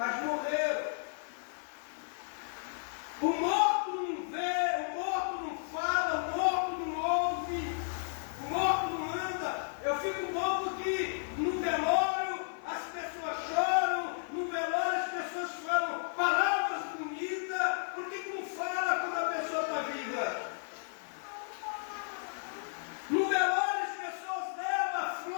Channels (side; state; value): right; silent; digital silence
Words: morreram. O morto não vê, o morto não fala, o morto não ouve, o morto não anda. Eu fico louco que no velório as pessoas choram, no velório as pessoas falam palavras bonitas. Por que não fala quando a pessoa está viva? No velório as pessoas levam